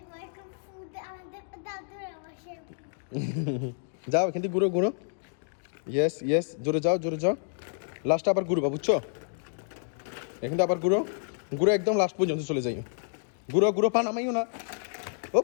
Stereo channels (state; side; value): silent; right; digital silence